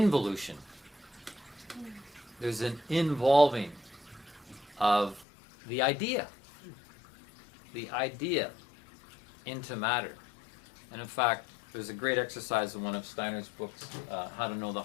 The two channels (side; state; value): right; drops out; at 5.2 s